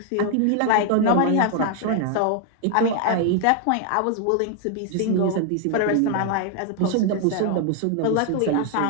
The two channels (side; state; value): both; different; correlation 0.00